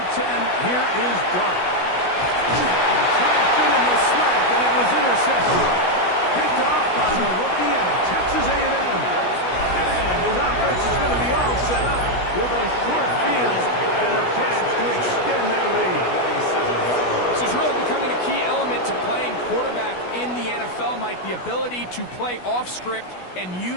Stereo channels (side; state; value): right; late; 16 ms